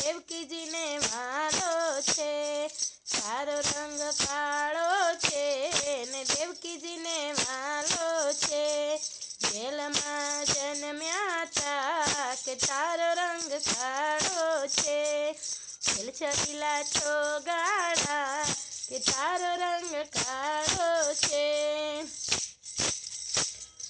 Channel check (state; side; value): identical; both; correlation 1.00